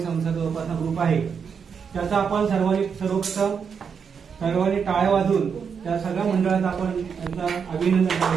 संस्था जोपासना ग्रुप आहे. त्याचा आपण सर्वांनी टाळ्या वाजवून त्या सगळ्या मंडळाचं आपण त्यांचं अभिनंदन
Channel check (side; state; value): left; quieter; 6.5 dB